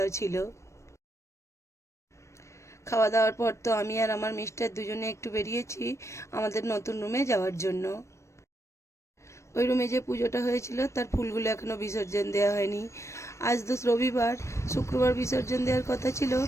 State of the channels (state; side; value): late; right; 0.14 ms